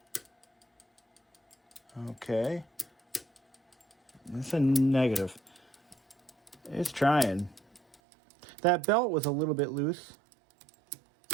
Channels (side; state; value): left; drops out; at 8.0 s